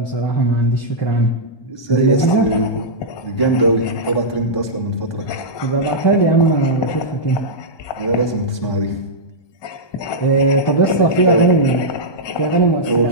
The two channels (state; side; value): late; right; 1.2 ms